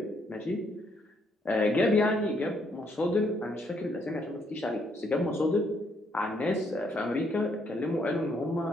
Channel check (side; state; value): both; normal; correlation 0.72